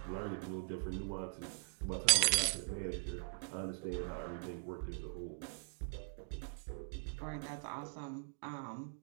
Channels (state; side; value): silent; left; digital silence